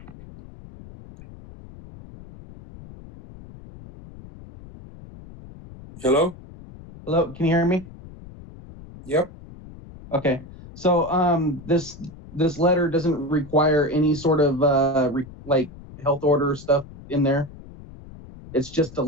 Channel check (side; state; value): left; noise; rumble, 18 dB below the sound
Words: Hello? Hello, can you hear me? Yep. Okay. So this letter doesn't require any sort of health order stuff in there. It's just a